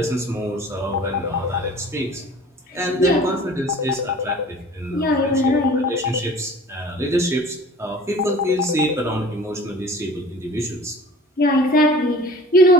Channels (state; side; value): normal; both; correlation 0.45